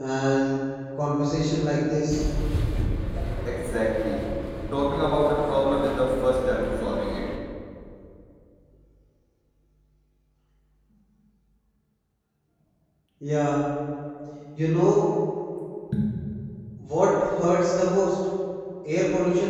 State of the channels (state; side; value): identical; both; correlation 1.00